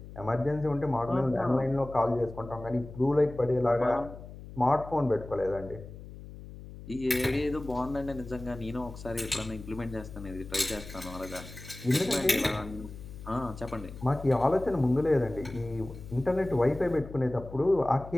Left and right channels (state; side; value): noise; left; hum, 14 dB below the sound